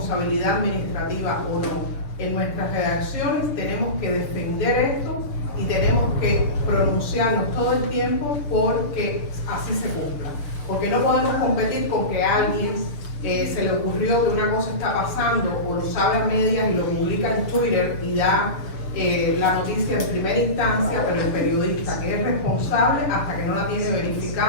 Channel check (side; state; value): right; late; 6.8 ms